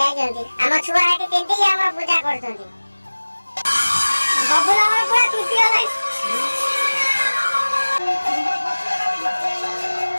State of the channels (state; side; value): inverted; both; correlation -1.00